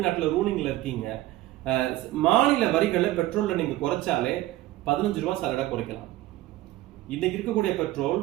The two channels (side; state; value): left; quieter; 16.3 dB